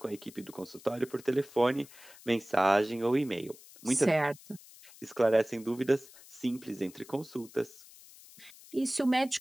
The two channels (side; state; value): left; noise; hiss, 21 dB below the sound